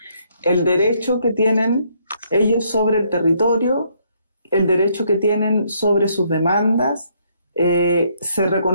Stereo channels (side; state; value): both; inverted; correlation -0.70